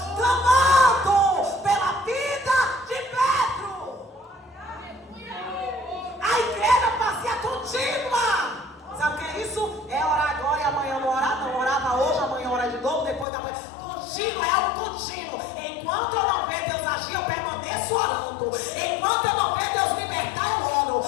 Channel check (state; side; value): drops out; right; at 13.2 s